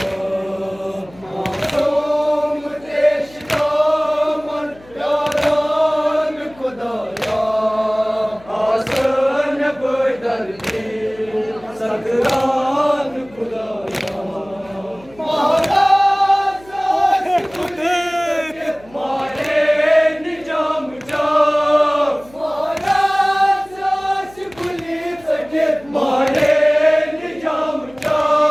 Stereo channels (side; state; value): left; noise; hum, 24 dB below the sound